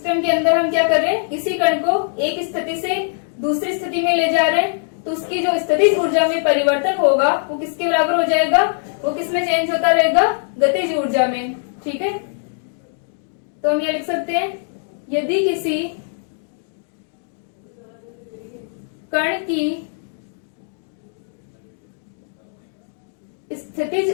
के अंदर हम क्या कर रहे हैं, किसी कण को एक स्थिति से दूसरी स्थिति में ले जा रहे हैं, तो उसकी जो स्थितिज ऊर्जा में परिवर्तन होगा वो किसके बराबर हो जाएगा, वो किस में चेंज होता रहेगा, गतिज ऊर्जा में। ठीक है, तो हम ये लिख सकते हैं, यदि किसी कण की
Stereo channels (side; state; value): right; silent; digital silence